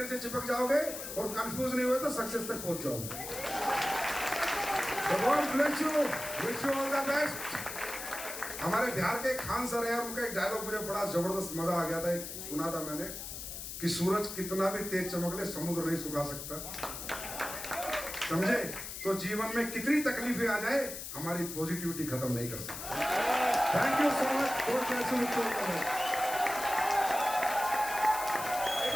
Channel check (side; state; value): left; noise; hiss, 8 dB below the sound